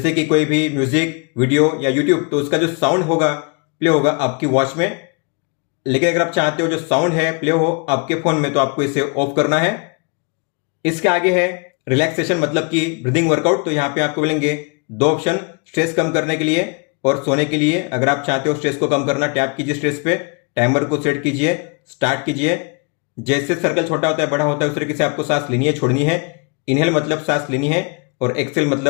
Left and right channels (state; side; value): quieter; right; 34.4 dB